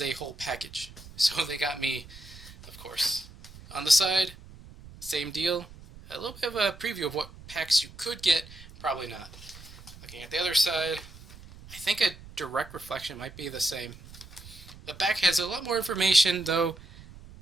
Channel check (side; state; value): right; noise; rumble, 18 dB below the sound